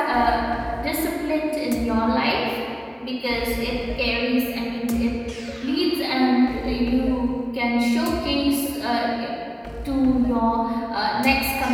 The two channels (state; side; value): identical; both; correlation 1.00